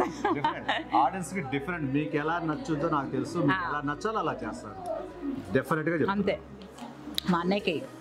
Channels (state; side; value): identical; both; correlation 1.00